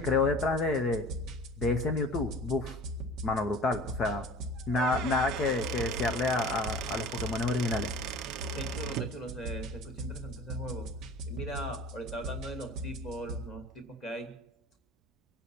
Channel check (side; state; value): both; normal; correlation 0.42